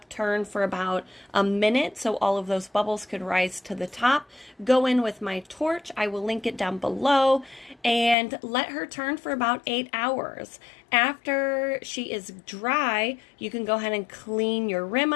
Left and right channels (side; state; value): right; drops out; at 8.2 s